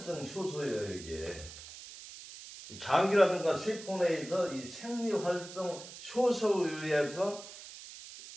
효소예요, 이게. 장기라든가 세포 내에서 이 생리활성 효소에 의해서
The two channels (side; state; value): right; noise; hiss, 14 dB below the sound